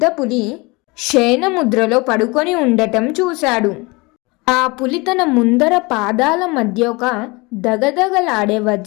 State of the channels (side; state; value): right; quieter; 25.5 dB